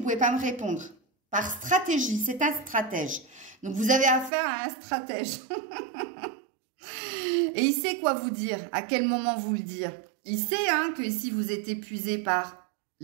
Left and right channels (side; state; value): left; drops out; at 4.3 s